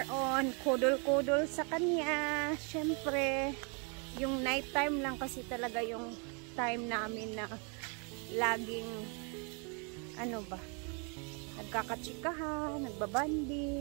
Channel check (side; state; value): left; quieter; 35.8 dB